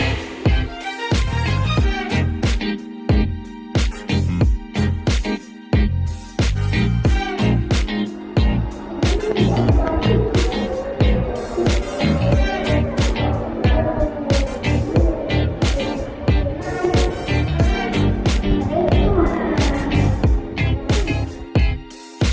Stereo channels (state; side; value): identical; both; correlation 1.00